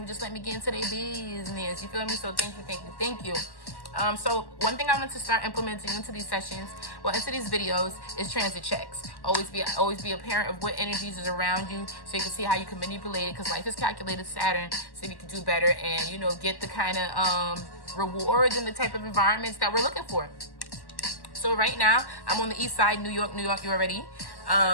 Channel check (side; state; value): right; late; 1.1 ms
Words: just let me get into their business. You feel me? So thank you, thank you, thank you. So one thing I want to start implementing into these sessions, into these videos, is transit checks. Always be a parent of what energies is around you, so you can see how you can manipulate it. Because life is calculated Saturn, so you can do better and get the kind of rewards and the type of environments that we're looking for. So right now I'm on the east side, New York. You already.